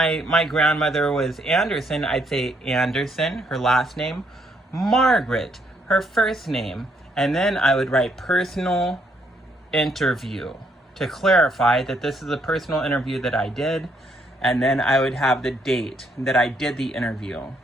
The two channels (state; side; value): normal; both; correlation 0.71